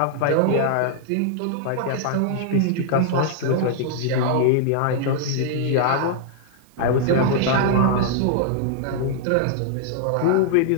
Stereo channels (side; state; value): both; different; correlation -0.01